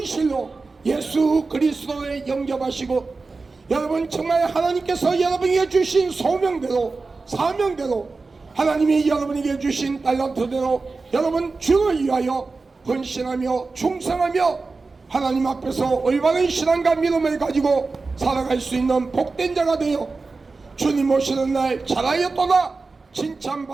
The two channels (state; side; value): quieter; left; 3.9 dB